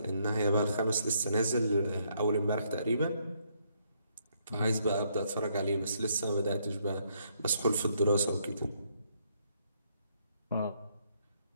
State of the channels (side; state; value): both; inverted; correlation -0.72